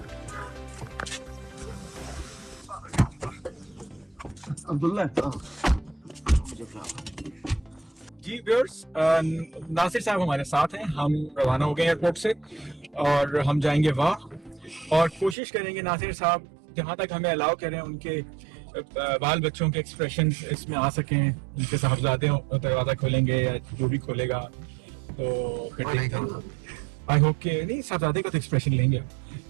अब्दुल्ला जी, व्यूअर्स, नासिर साहब हमारे साथ हैं। हम रवाना हो गए एयरपोर्ट से और हम जाएंगे वहाँ और कोशिश करेंगे नासिर साहब जहाँ तक हमें अलाउ करें उनके बाल बच्चों के एक्सप्रेशंस इसमें आ सकें। उनके साहबजादे दरवाज़ा खोलेंगे या जो भी खोलेगा तो फिर आई होप के नहीं, साहबजादे का तो एक्सप्रेशन लेंगे।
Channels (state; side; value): drops out; left; at 15.4 s